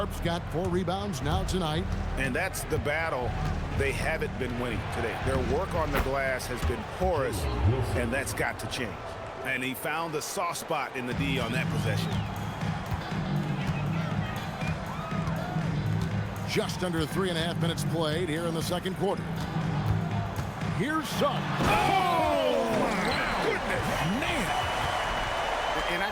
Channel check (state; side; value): identical; both; correlation 1.00